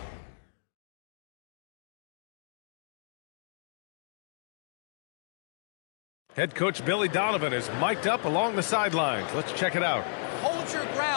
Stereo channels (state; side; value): silent; right; digital silence